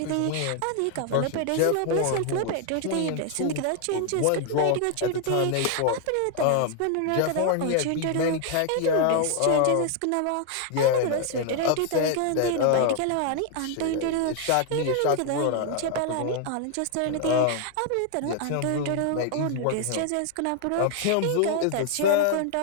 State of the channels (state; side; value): different; both; correlation 0.00